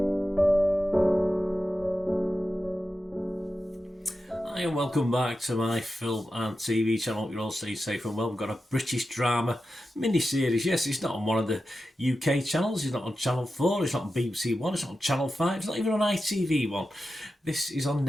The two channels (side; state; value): both; normal; correlation 0.91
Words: and welcome back to my film and TV channel. Hope you're all staying safe and well. We've got a British drama mini-series. Yes, it's not on one of the UK channels. It's not on Channel 4. It's not on BBC One. It's not on Channel 5. It's not even on ITV One. This is on